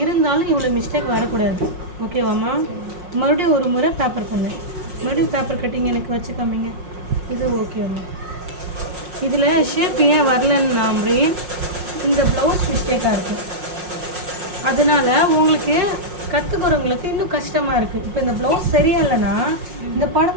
இருந்தாலும் இவ்வளோ மிஸ்டேக் வரக்கூடாது. ஓகேவாம்மா? மறுபடியும் ஒரு முறை பேப்பர் பண்ணு. மறுபடியும் பேப்பர் கட்டிங் எனக்கு வச்சு காமிங்க. இது ஓகேவாம்மா? இதில் ஷேப் ஏன் வரலன்னு இந்த ப்ளவுஸ் மிஸ்டேக்காக இருக்குது. அதனால் உங்களுக்கு கற்றுக்கிறவங்களுக்கு இன்னும் கஷ்டமாக இருக்குது. இப்போ இந்த ப்ளவுஸ் சரியா இல்லைன்னா இந்த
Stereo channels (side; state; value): left; late; 5.6 ms